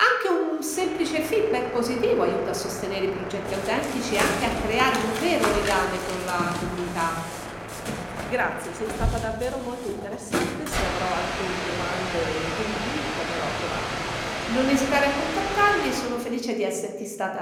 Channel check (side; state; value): both; identical; correlation 1.00